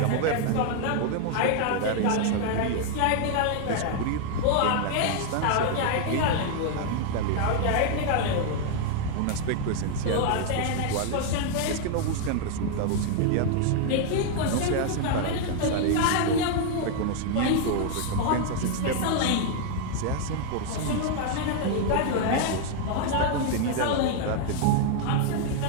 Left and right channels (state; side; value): different; both; correlation 0.00